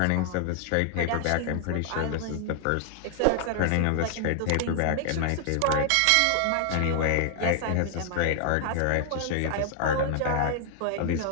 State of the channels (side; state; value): both; different; correlation -0.01